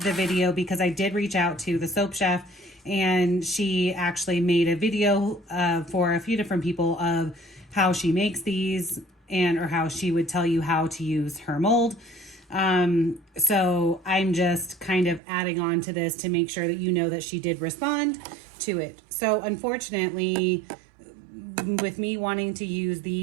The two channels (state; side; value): drops out; left; at 15.2 s